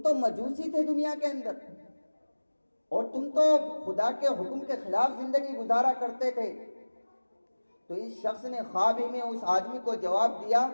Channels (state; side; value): inverted; both; correlation -1.00